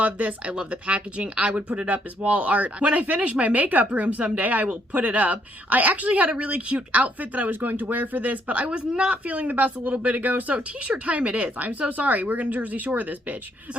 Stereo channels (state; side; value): normal; both; correlation 0.70